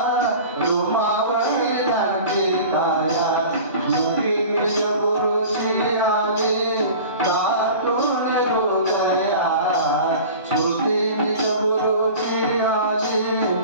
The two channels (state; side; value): inverted; both; correlation -0.39